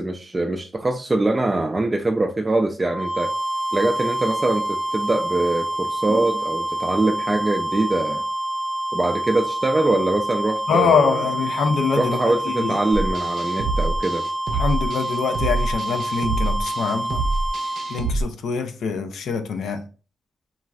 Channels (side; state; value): both; normal; correlation 0.87